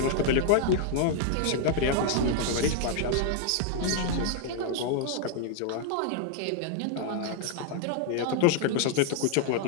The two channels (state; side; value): different; both; correlation 0.00